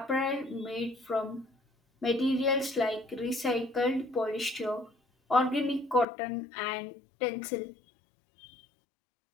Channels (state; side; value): drops out; right; at 6.1 s